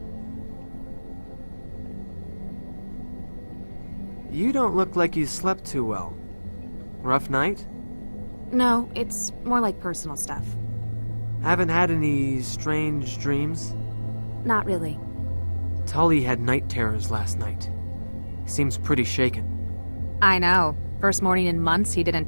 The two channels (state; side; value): inverted; both; correlation -1.00